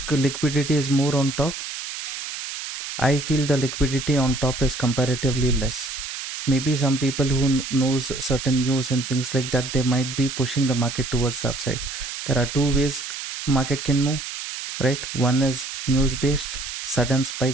liquidity is more on top? I feel the liquidity on top is comparatively less. Maybe some people who knows certain news and things like that, they might be pushing the market towards the upside. There are two ways market can move, right? One is news based, sudden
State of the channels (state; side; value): noise; right; hiss, 7 dB below the sound